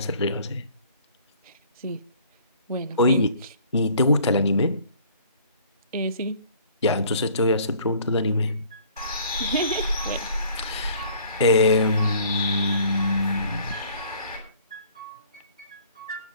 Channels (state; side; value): inverted; both; correlation -0.54